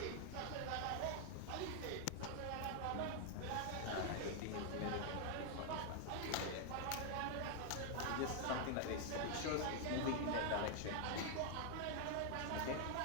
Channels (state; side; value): different; both; correlation 0.00